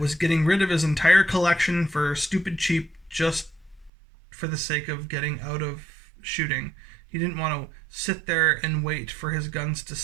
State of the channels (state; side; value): drops out; left; at 3.9 s